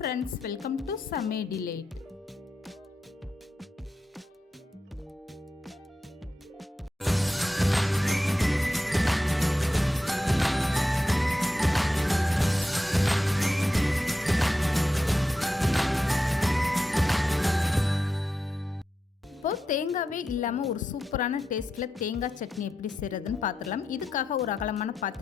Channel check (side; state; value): both; normal; correlation 0.88